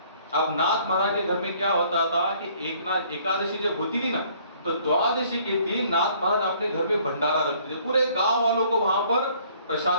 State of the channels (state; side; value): inverted; both; correlation -0.59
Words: अब नाथ महाराज के घर में क्या होता था कि एकादशी जब होती थी ना, तो द्वादशी के दिन नाथ महाराज अपने घर में भंडारा रखते थे, पूरे गांव वालों को वहां पर